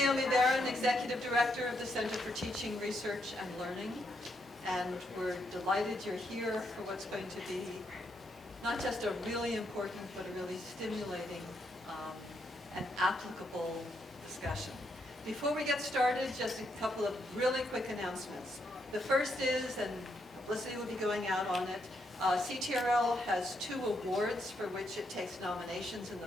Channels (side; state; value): both; normal; correlation 0.78